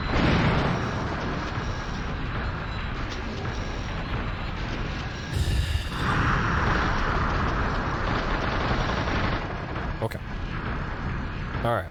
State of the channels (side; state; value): both; identical; correlation 1.00